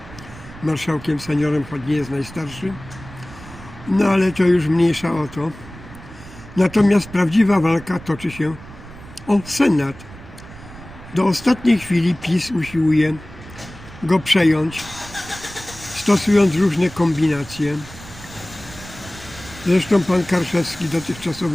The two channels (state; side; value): noise; right; rumble, 17 dB below the sound